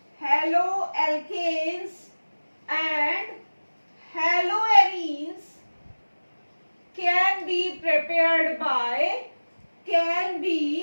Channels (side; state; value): both; inverted; correlation -1.00